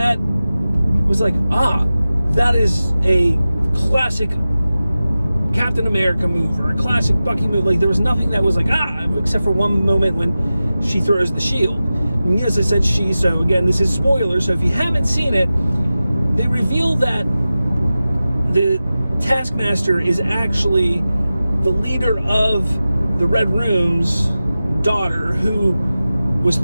was like, that is a classic Captain America move or a classic Bucky move. Like, there was nothing that was like, except for one moment when she throws the shield. And as I said, so again, this is spoiler, so if you haven't seen it, they reveal that the Taskmaster is actually the leader of the Red Room's daughter, who was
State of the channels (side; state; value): both; inverted; correlation -0.95